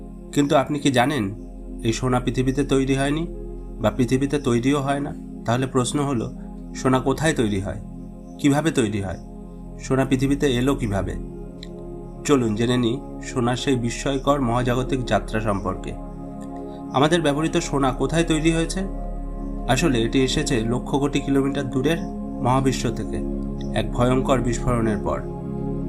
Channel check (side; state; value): both; identical; correlation 1.00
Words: কিন্তু আপনি কি জানেন এই সোনা পৃথিবীতে তৈরি হয়নি বা পৃথিবীতে তৈরিও হয় না? তাহলে প্রশ্ন হলো, সোনা কোথায় তৈরি হয়, কিভাবে তৈরি হয়, সোনা পৃথিবীতে এলো কিভাবে? চলুন জেনে নিই সোনার সেই বিস্ময়কর মহাজাগতিক যাত্রা সম্পর্কে। আমাদের ব্যবহৃত সোনা কোথায় তৈরি হয়েছে? আসলে এটি এসেছে লক্ষ কোটি কিলোমিটার দূরের মহাবিশ্ব থেকে এক ভয়ঙ্কর বিস্ফোরণের পর।